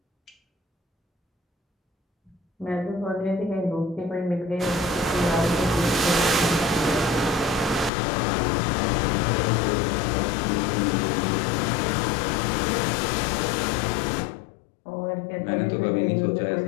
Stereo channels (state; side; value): drops out; right; at 7.9 s